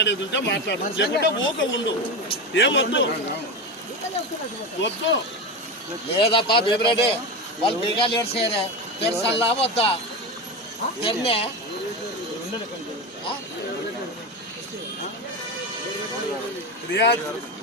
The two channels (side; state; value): both; normal; correlation 0.19